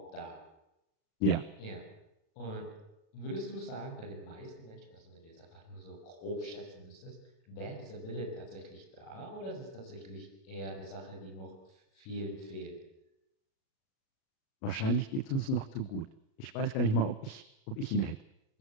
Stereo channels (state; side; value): late; right; 37 ms